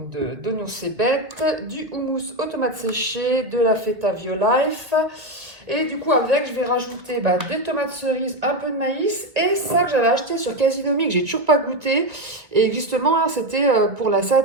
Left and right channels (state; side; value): late; left; 1.6 ms